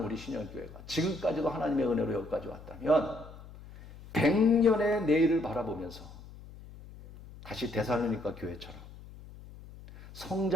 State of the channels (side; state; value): left; noise; hum, 17 dB below the sound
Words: 우리 신영교회가 지금까지도 하나님의 은혜로 여기까지 왔다면 100년의 내일을 바라보면서 다시 데살로니가 교회처럼